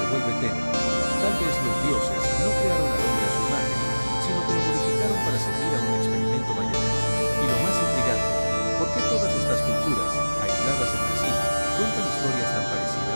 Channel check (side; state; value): both; inverted; correlation -1.00